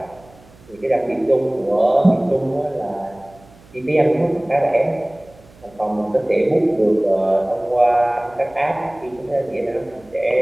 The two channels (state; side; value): noise; right; hum, 26 dB below the sound